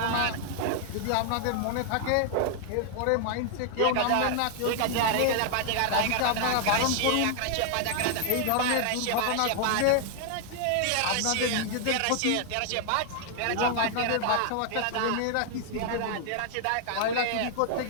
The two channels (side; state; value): both; different; correlation 0.00